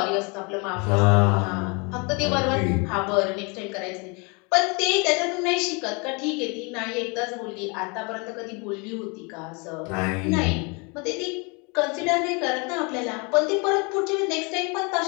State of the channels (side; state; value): right; quieter; 30.9 dB